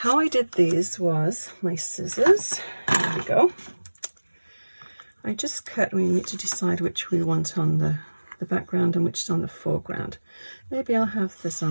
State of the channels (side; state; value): both; inverted; correlation -1.00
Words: I did these was my scissors. There we go. I just cut. We need to decide which we want on the background and which is on the foreground. Maybe I'll have this